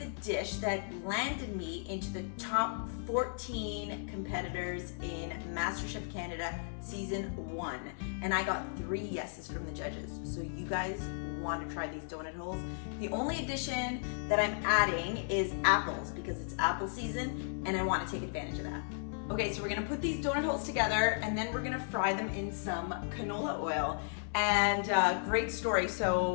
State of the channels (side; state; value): right; silent; 54 dB below the other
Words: dish that landed me into the top 14 competitors in MasterChef Canada season 1. And I got 3 yeses from the judges. So you guys want to try these donut holes. The only addition that I'm adding is apples because it's apple season and I want to take advantage of that. Okay, so we're gonna put these donut holes together and then we're gonna fry them in some canola oil. And great story,